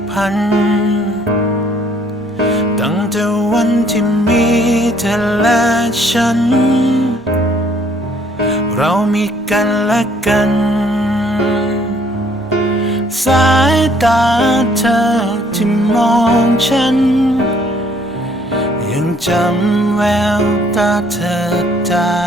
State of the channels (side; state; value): both; normal; correlation 0.62